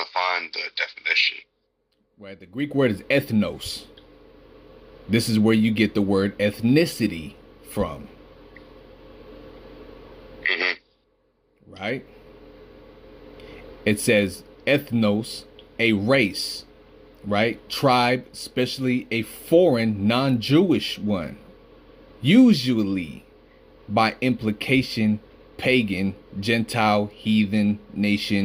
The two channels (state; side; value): identical; both; correlation 1.00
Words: to find the definition. Right, the Greek word is ethnos. This is where you get the word ethnicity from. Mm-hmm. Right? It says ethnos, a race, right? Tribe, especially a foreign, non-Jewish one. Usually, by implication, pagan, Gentile, heathen,